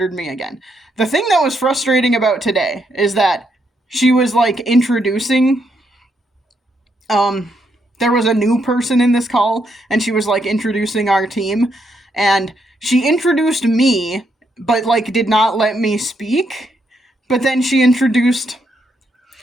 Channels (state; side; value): normal; both; correlation 0.77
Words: me again. The thing that was frustrating about today is that she was introducing, there was a new person in this call, and she was introducing our team, and she introduced me, but did not let me speak. But then she introduced